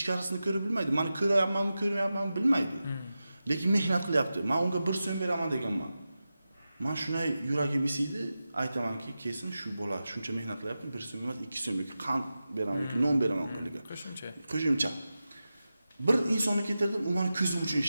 ko'rib bilmaydi. Meni ko'ryapmanmi, ko'rmayapmanmi bilmaydi. Lekin mehnat qilyapti. Men unga 1 so'm beraman deganman. Men shunday yuragim isiydi, aytamanki, kesin shu bola shuncha mehnat qilyapti, 1 so'm emas, 2 so'm yoki qand beraman yoki non beraman qo'liga. Qo'shimcha. Bir insonni ketirdim, u meni ko'zim uchun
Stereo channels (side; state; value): both; inverted; correlation -0.93